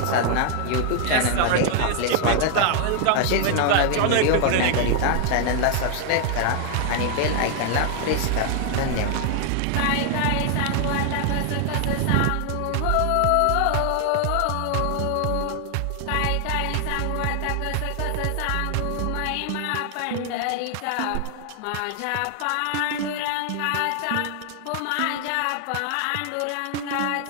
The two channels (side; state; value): both; different; correlation 0.00